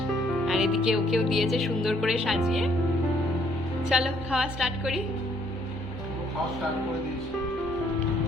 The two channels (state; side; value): normal; both; correlation 0.66